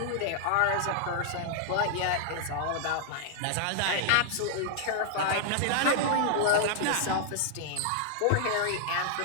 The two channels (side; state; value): both; different; correlation 0.00